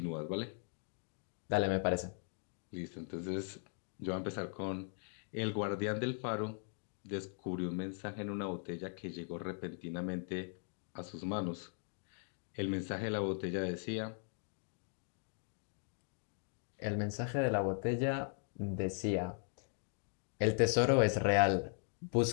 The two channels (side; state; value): right; silent; 52 dB below the other